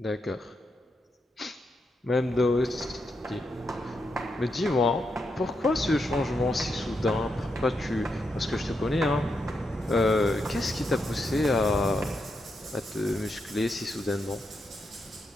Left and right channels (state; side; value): normal; both; correlation 0.83